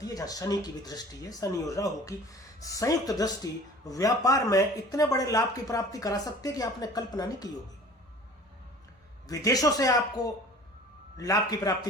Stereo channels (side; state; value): both; normal; correlation 0.45